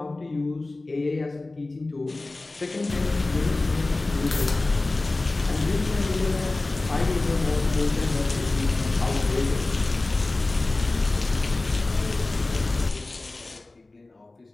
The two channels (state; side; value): quieter; right; 3.1 dB